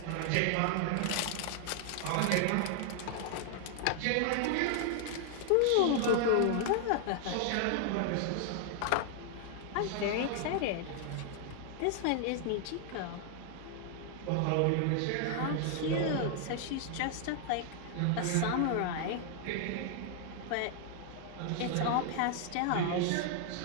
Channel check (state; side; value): different; both; correlation 0.00